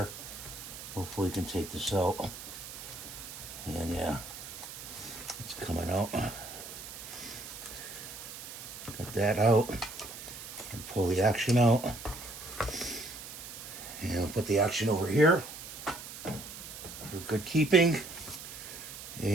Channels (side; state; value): right; noise; hiss, 11 dB below the sound